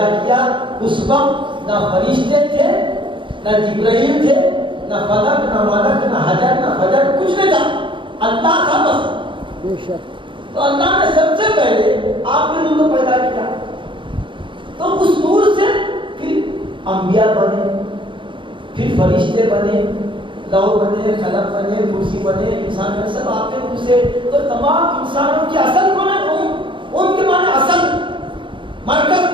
کیا. اس وقت نہ فرشتے تھے, نہ جبرائیل تھے, نہ فلک, نہ ملک, نہ حجر, نہ فجر, کچھ نہیں تھا, اللہ تھا بس. بے شک. تو اللہ نے سب سے پہلے آپ کے نور کو پیدا کیا. تو اس نور سے پھر انبیاء بنے, پھر فرشتے بنے, لوح بنے, قلم بنے, کرسی بنے, انسان بنے, سب آپ کے نور سے. تو تمام انسانوں کی اصل کون ہے, ان کے معنی اصل, مرکز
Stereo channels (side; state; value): left; late; 0.24 ms